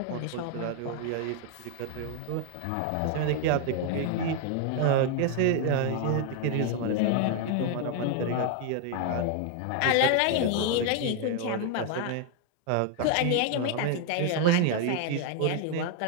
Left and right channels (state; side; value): different; both; correlation 0.00